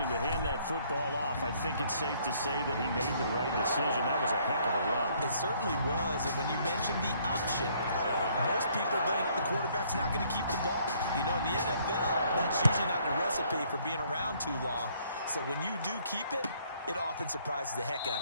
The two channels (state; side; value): inverted; both; correlation -0.64